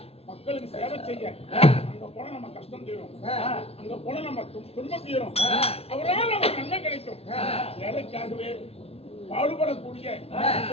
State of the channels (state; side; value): late; right; 0.29 ms